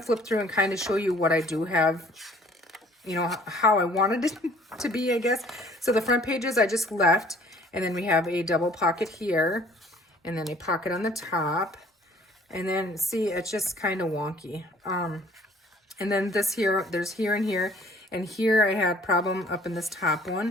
flip through and kind of show you what I do have, how I wanted it to be, I guess. So the front pages I just left. And then we have a double pocket here, and then a pocket on the top. And then, see, it's just kind of wonky. And then this here, there's here and here. And here I had problem up in this top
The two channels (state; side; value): normal; both; correlation 0.55